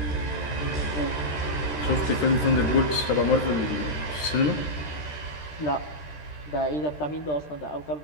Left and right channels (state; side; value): late; right; 13 ms